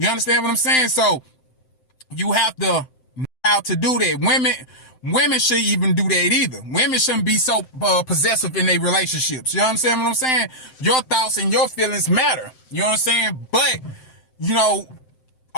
understand what I'm saying? So you have to know how to do that. Women shouldn't even do that either. Women shouldn't be so possessive in their relationships. You understand what I'm saying? Your thoughts and your feelings matter. You know what I'm saying? But,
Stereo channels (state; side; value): late; right; 7.7 ms